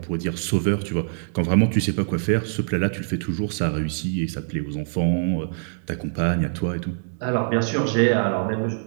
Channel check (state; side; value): silent; left; digital silence